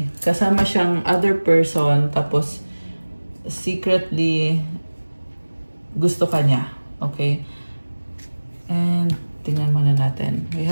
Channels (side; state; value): both; inverted; correlation -1.00